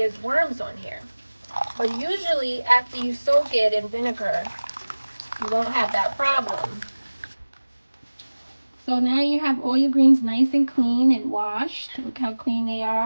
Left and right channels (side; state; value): both; inverted; correlation -1.00